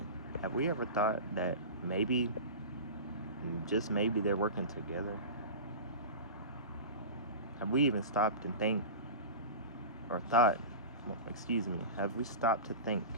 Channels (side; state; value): both; inverted; correlation -0.30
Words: have we ever thought that maybe, just maybe, they're working together? Have we even stopped and think, or thought, have we stopped to think